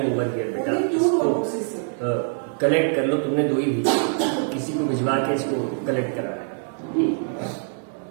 over here बेटा, इसको कलेक्ट कर लो। तुमने 2 ही भेजी, किसी को भिजवा के इसको कलेक्ट करा है।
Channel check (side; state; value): left; silent; 55 dB below the other